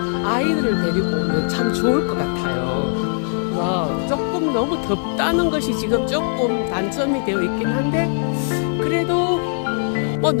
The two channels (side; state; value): right; silent; 65 dB below the other